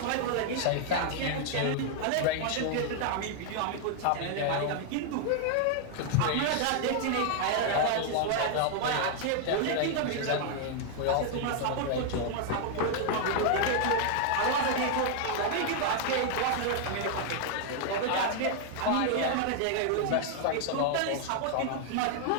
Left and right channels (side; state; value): both; different; correlation 0.00